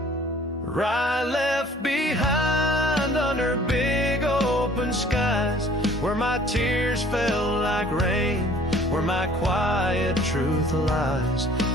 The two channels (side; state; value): both; normal; correlation 0.54